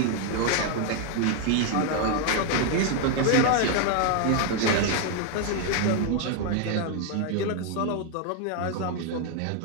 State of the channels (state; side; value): different; both; correlation 0.01